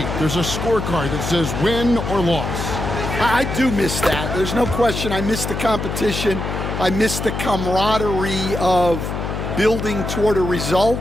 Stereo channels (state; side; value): noise; left; hum, 4 dB below the sound